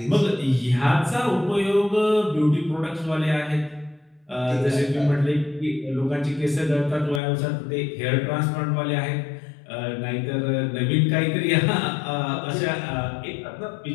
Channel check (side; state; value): right; drops out; at 7.2 s